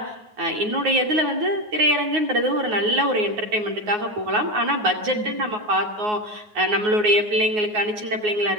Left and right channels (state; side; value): late; left; 9.5 ms